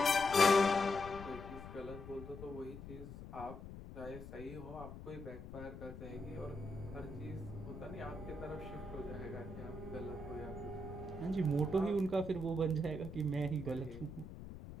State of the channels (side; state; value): left; noise; rumble, 11 dB below the sound